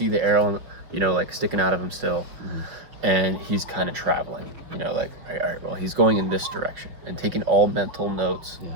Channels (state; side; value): late; left; 5.7 ms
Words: the arrow, like sticking out of him still. And he's kind of traveling, like, all right, well, he's going in this direction, and taking all mental notes,